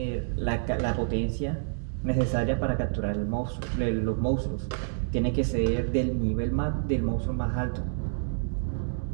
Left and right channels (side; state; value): left; silent; digital silence